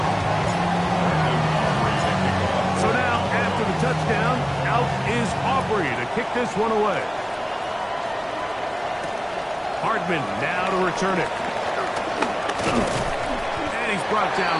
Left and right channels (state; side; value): identical; both; correlation 1.00